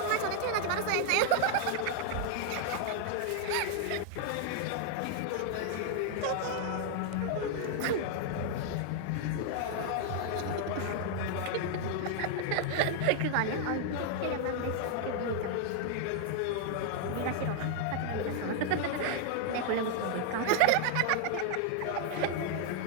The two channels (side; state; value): both; different; correlation 0.00